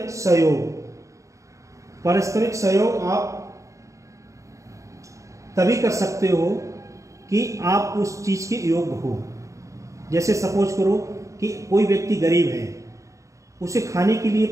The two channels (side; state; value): left; late; 0.15 ms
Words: सहयोग। पारस्परिक सहयोग आप तभी कर सकते हो कि आप उस चीज के योग्य हो। जैसे सपोज करो कि कोई व्यक्ति गरीब है, उसे खाने के लिए